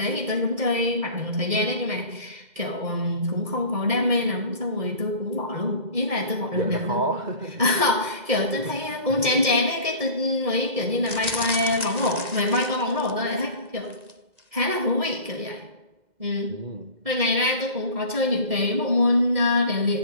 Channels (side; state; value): left; late; 2.1 ms